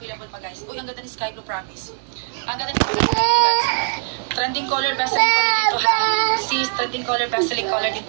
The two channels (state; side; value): silent; left; digital silence